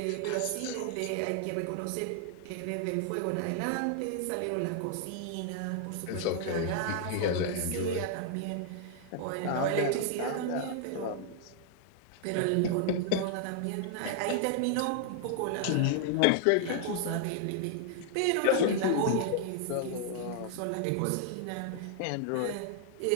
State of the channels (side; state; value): both; different; correlation -0.01